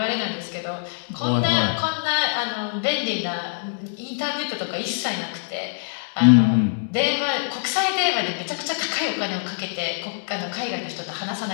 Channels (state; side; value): silent; right; digital silence